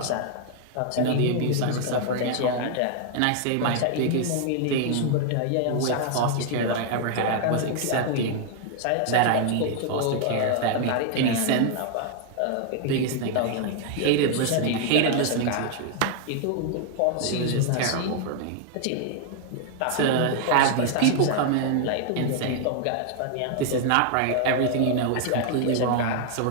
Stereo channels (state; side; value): different; both; correlation 0.00